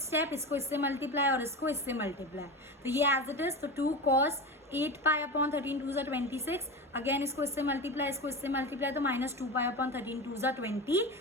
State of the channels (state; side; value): normal; both; correlation 0.25